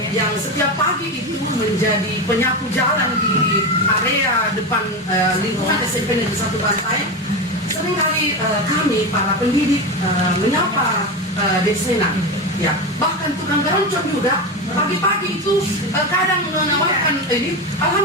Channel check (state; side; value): normal; both; correlation 0.19